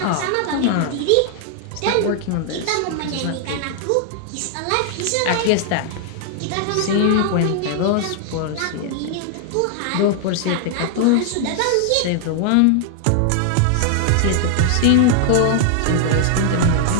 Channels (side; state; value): both; different; correlation 0.00